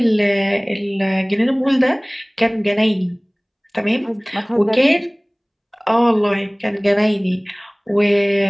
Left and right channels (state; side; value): identical; both; correlation 1.00